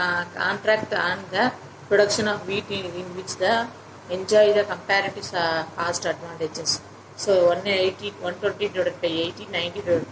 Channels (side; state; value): both; identical; correlation 1.00